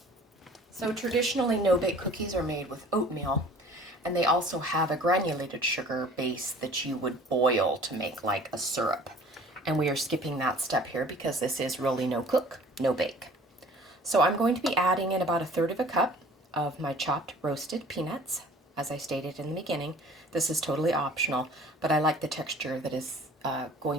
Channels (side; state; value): both; normal; correlation 0.48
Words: So traditionally, no-bake cookies are made with oatmeal, and they also have a granulated sugar base that you would boil to make like a syrup. And we are skipping that step here because this is really no cook, no bake. So I'm going to be adding in about 1/3 of a cup of my chopped roasted peanuts. As I stated in the beginning, this is totally optional, but I like the texture that is